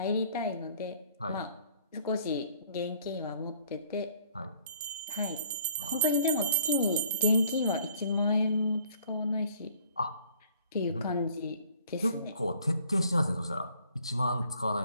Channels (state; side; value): inverted; both; correlation -0.58